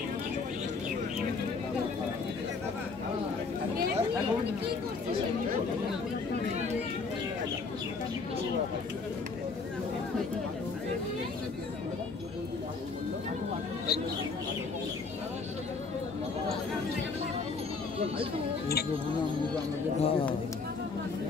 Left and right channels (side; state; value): right; quieter; 4.4 dB